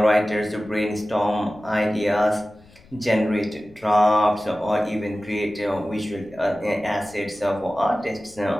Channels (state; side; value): noise; left; rumble, 26 dB below the sound